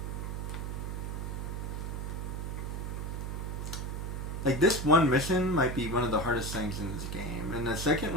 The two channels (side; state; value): right; noise; hum, 4 dB below the sound